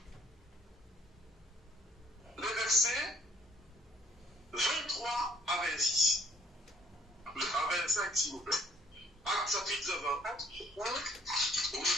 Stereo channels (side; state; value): both; normal; correlation 0.61